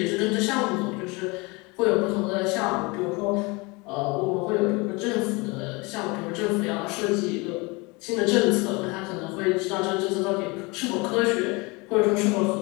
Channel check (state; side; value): quieter; right; 26.5 dB